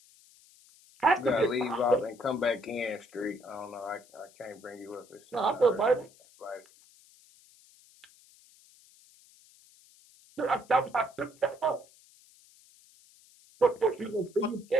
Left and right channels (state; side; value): noise; left; hiss, 27 dB below the sound